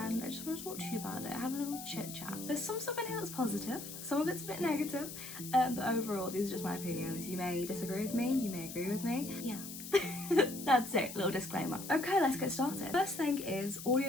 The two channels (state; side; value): noise; left; hiss, 10 dB below the sound